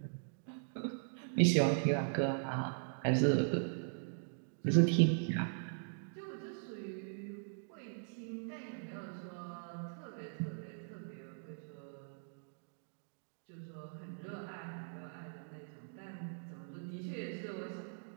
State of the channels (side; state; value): left; silent; digital silence